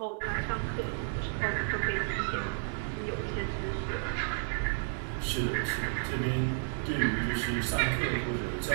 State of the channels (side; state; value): left; silent; digital silence